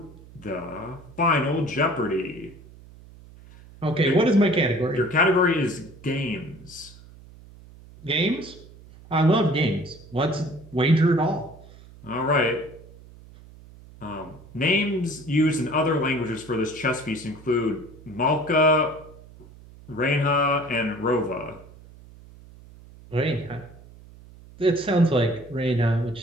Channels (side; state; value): right; noise; hum, 21 dB below the sound